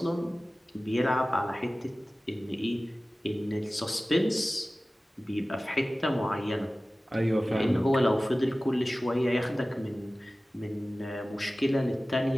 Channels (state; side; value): normal; both; correlation 0.97